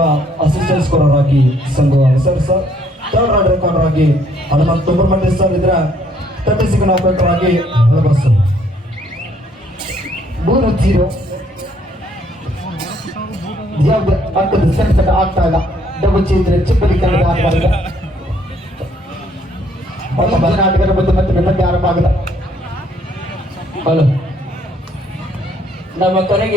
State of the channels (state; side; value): normal; both; correlation 0.66